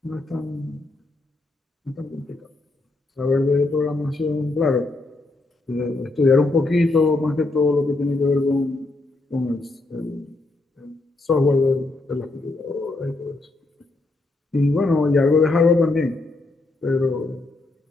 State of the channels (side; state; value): right; quieter; 3.1 dB